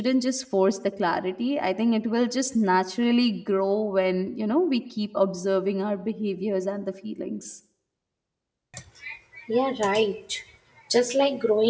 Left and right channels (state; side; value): identical; both; correlation 1.00